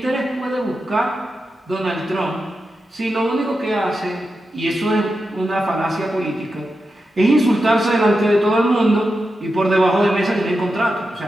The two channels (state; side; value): normal; both; correlation 0.89